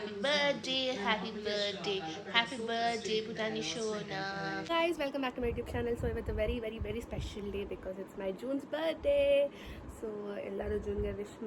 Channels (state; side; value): identical; both; correlation 1.00